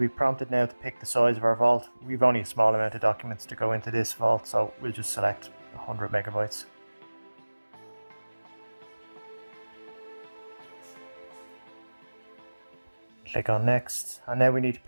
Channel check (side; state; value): both; inverted; correlation -1.00